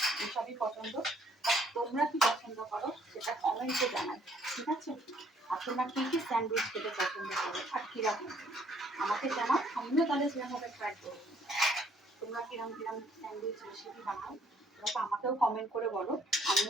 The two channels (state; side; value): normal; both; correlation 0.64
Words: এসবই পছন্দ। তোমরা কি পছন্দ করো সেটা কমেন্টে জানাই, ঠিক আছে? আর তোমরা কী কী স্যান্ডউইচ খেতে পছন্দ করো আর কীরকম আমাকে জানাও, আমিও তাহলে সেরকমভাবে ট্রাই করবো। তোমরা কিরকম কিরকম স্যান্ডউইচ রেসিপি বানাও তোমরা আমাকেও কমেন্ট করে বলো,